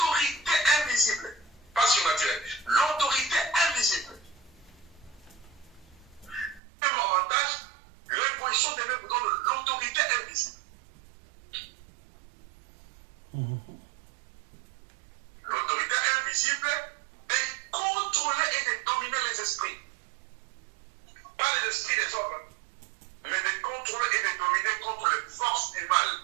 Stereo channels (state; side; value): drops out; left; at 6.6 s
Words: invisible, pas surnaturelle, l'autorité invisible. Même avantage, l'imposition des mains vous donne l'autorité invisible. L'autorité invisible de contrôler et de dominer les esprits. Pas les esprits des hommes, mais de contrôler et de dominer contre les forces du mal.